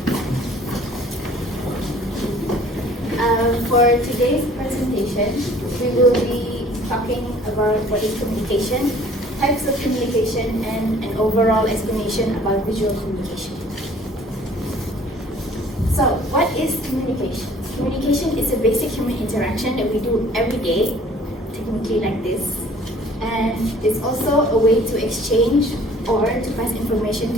For today's presentation, we will be talking about what is communication, types of communication, and an overall explanation about visual communication. So, what is communication? Communication is a basic human interaction that we do every day, technically like this, and it's also a way to exchange or to pass information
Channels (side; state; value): both; normal; correlation 0.52